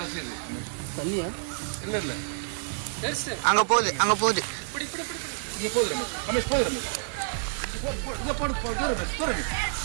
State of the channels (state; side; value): silent; left; 59 dB below the other